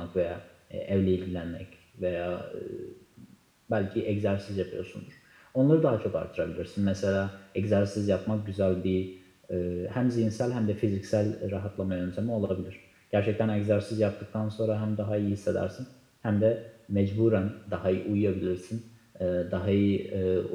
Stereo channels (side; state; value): both; identical; correlation 1.00